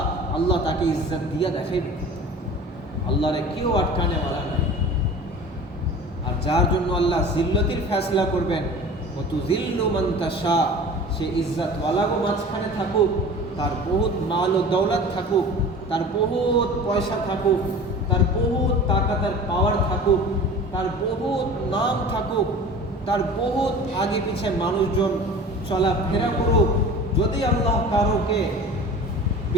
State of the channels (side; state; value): both; normal; correlation 0.39